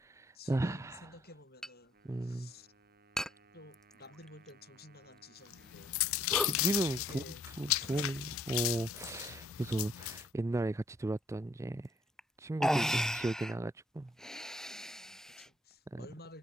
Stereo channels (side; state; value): both; normal; correlation 0.66